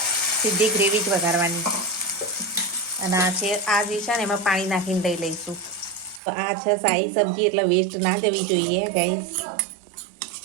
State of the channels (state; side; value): drops out; left; at 6.2 s